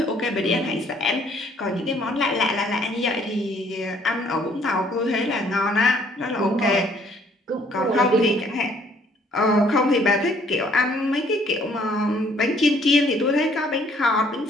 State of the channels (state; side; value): normal; both; correlation 0.62